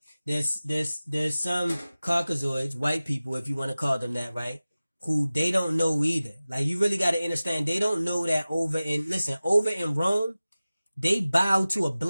Caucasoids, white people, if you want to call them that, right? Who they don't know either. Like, you really got to understand, they don't know that over in Rome, they bow to a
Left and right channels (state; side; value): inverted; both; correlation -0.97